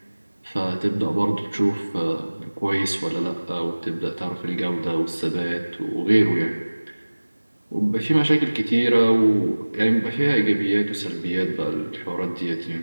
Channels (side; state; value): both; inverted; correlation -1.00